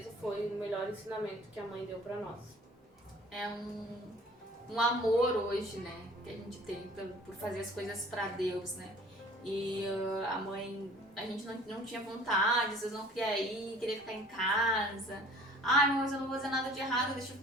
foi o melhor ensinamento que a mãe deu para nós. É um amor hoje, né? que a gente tem por fazer as coisas pra Deus, né? E a mãe, a gente não tinha vontade, às vezes não queria ir, queria ficar em casa. Ai, mas eu não vou fazer nada de errado, deixa eu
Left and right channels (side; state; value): both; normal; correlation 0.50